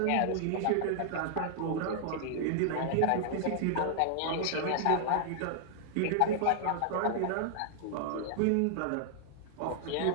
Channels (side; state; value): both; different; correlation -0.01